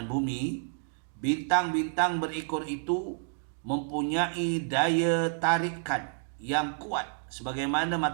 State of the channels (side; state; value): left; silent; digital silence